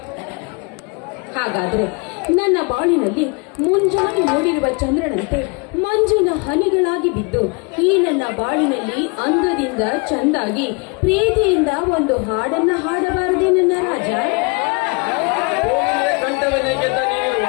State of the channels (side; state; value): right; quieter; 31.7 dB